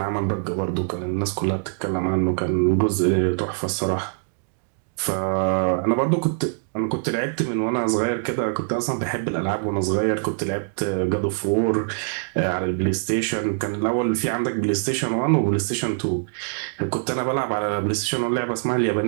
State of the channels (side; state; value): left; silent; digital silence